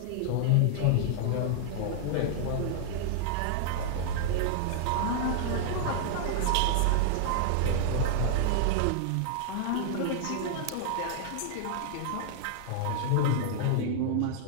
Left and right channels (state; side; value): different; both; correlation -0.01